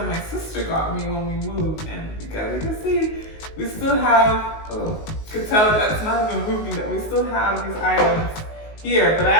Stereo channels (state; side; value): late; right; 19 ms